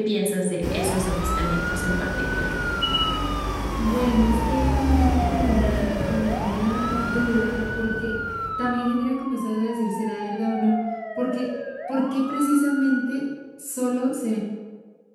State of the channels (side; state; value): both; identical; correlation 1.00